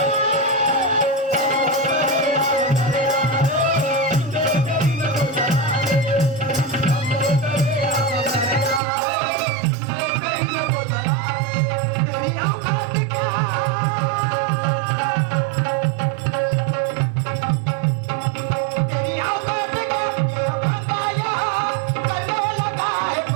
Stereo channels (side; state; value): left; drops out; at 8.8 s